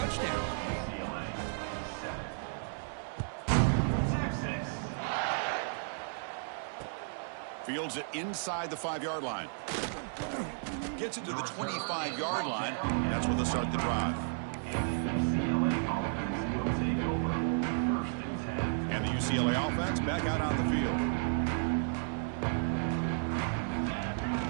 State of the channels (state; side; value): silent; left; digital silence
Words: Fields it inside the 5-yard line. Gets it to the 25-yard line. That's where they'll start the drive. And the UCLA offense back out on the field.